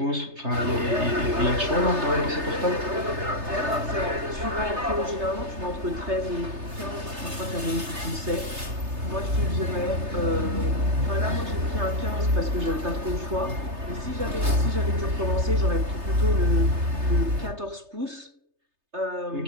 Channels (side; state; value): left; late; 3.3 ms